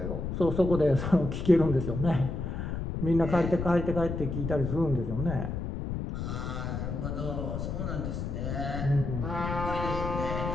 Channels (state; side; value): noise; left; rumble, 4 dB below the sound